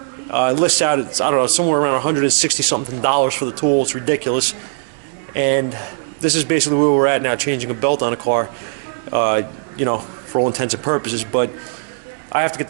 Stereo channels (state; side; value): silent; left; digital silence